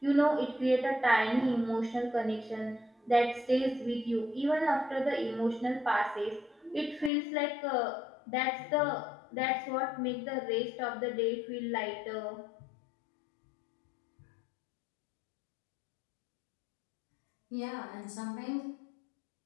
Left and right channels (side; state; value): right; drops out; at 7.1 s